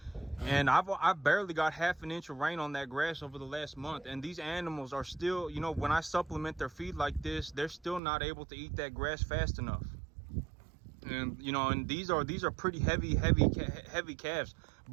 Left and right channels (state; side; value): drops out; left; at 8.0 s